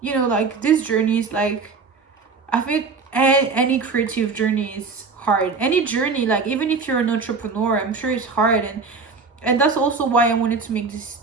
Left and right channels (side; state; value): left; quieter; 4.6 dB